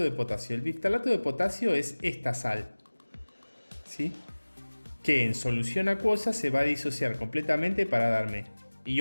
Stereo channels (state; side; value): inverted; both; correlation -1.00